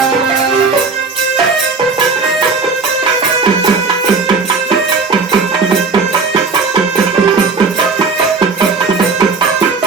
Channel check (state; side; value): quieter; left; 4.5 dB